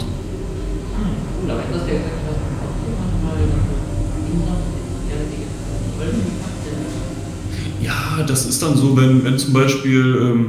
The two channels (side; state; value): both; identical; correlation 1.00